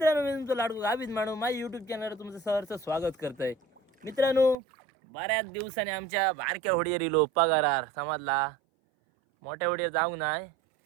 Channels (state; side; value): drops out; left; at 4.5 s